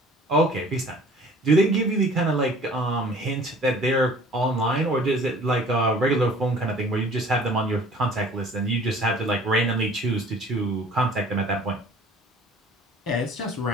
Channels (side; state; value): both; normal; correlation 0.50